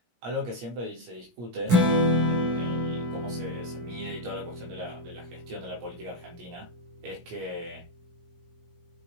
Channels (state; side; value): late; left; 17 ms